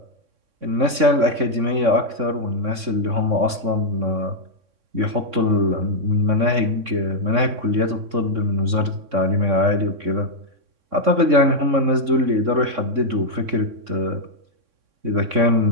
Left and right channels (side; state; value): left; late; 3.6 ms